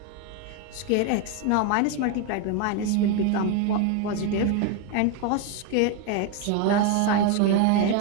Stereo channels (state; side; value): different; both; correlation 0.02